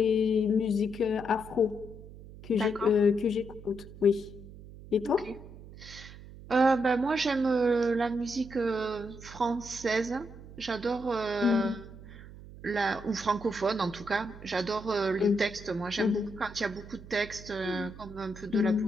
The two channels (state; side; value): noise; right; hum, 16 dB below the sound